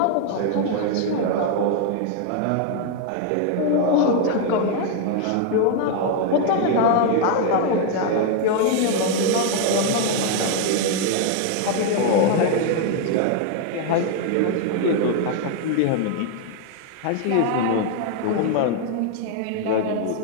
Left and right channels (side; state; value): both; different; correlation 0.00